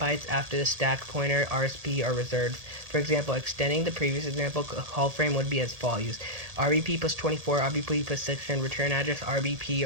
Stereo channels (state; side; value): late; left; 1.8 ms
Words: after the stack pointer RSP are reserved. For example, extending the previous example, a call frame would be as follows: RBP plus 24, RBP plus 6, and return address